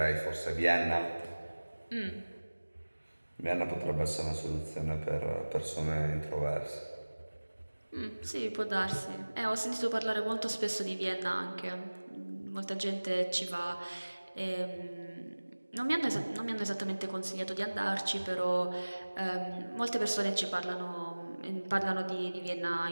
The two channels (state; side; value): inverted; both; correlation -1.00